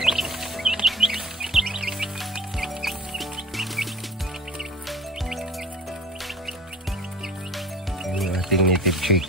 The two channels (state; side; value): normal; both; correlation 0.41